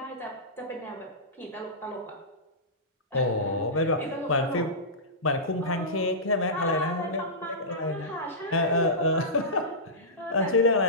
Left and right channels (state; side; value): normal; both; correlation -0.18